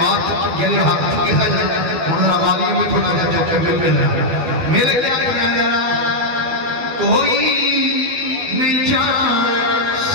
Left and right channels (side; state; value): left; late; 12 ms